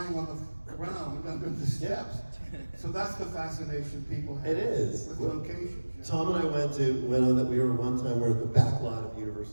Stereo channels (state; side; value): inverted; both; correlation -1.00